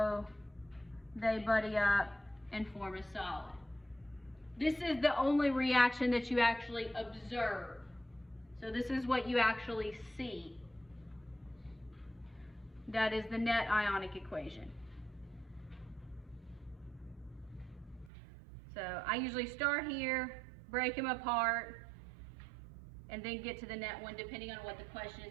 they buddy up and form a solid. This is the only reaction that you actually observe. So this is what you actually see. That is the net ionic equation. So I usually start here, break them apart, and then get to the net one depending on what the question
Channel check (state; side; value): drops out; left; at 18.1 s